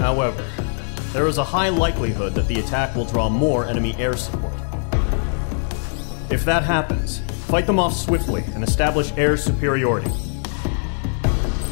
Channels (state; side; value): silent; right; digital silence